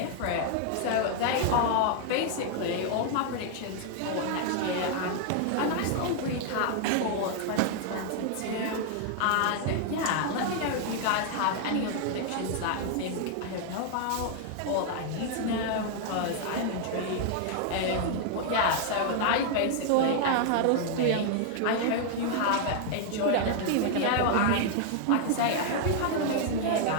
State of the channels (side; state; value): both; different; correlation 0.00